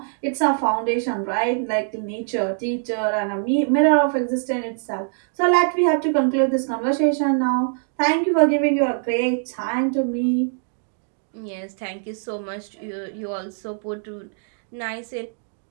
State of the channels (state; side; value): silent; left; digital silence